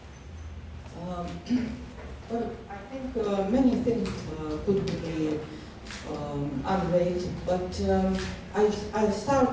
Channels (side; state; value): both; identical; correlation 1.00